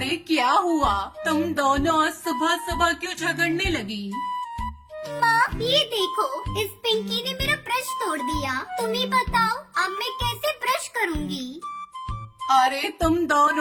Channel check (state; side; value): identical; both; correlation 1.00